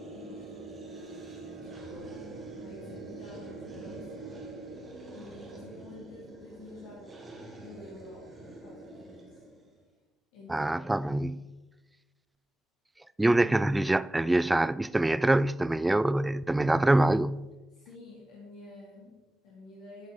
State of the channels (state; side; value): normal; both; correlation 0.97